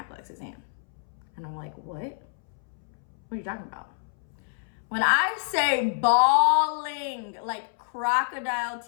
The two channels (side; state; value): right; silent; 60 dB below the other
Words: exam. And I'm like, what? What are you talking about? When I say bawling, like crocodile